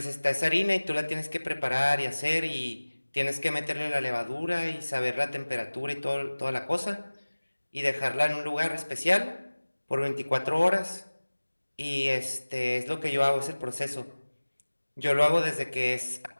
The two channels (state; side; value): inverted; both; correlation -1.00